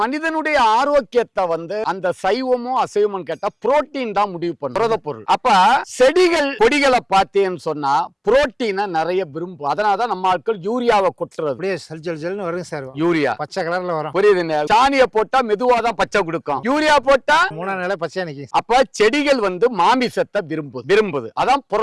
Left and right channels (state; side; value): identical; both; correlation 1.00